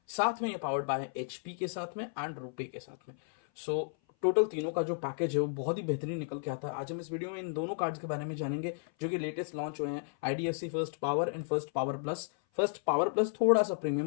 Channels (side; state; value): right; silent; 56 dB below the other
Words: साथ में ये पावर्ड बाय एचपी के साथ में एंड रुपे के साथ में। सो टोटल तीनों का जो पैकेज है वो बहुत ही बेहतरीन निकल के आता है। आज हम इस वीडियो में इन दोनों कार्ड्स के बारे में जानेंगे जो कि लेटेस्ट लॉन्च हुए हैं, IDFC first power and first power plus. First power plus थोड़ा सा